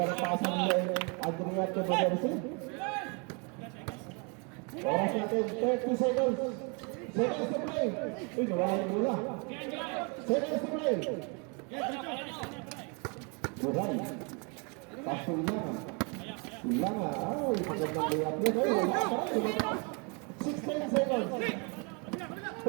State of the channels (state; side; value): quieter; left; 33.7 dB